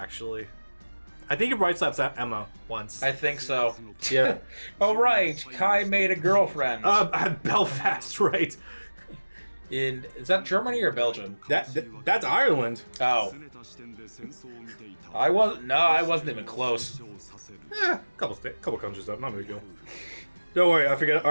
I think he Bright Slaps Emma once. I think so. Yeah. Oh, right. Kai made a girlfriend. Belfast, right. Is that Germany or Belgium? That's Ireland. Oh. I wasn't even close. Couple countries up, not a big deal. Don't worry, I forget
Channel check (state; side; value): inverted; both; correlation -1.00